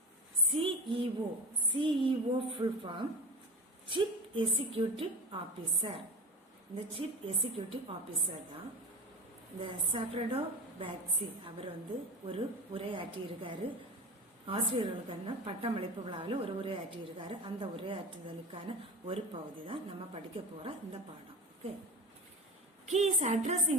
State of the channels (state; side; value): normal; both; correlation 0.28